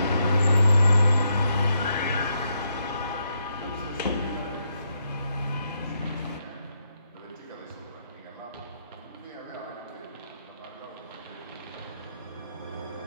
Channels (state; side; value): inverted; both; correlation -0.80